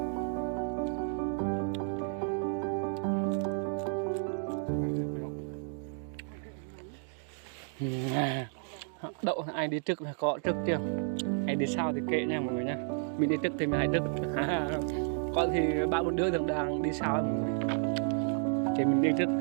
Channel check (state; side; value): silent; left; 56 dB below the other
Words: Đậu ai đi trước là có trước chưa, ai đi sau thì kệ nha mọi người nha. Mình đi trước thì mình hãy trước. Có thì 3-4 đứa đang đi sau mọi người, thì mình đi trước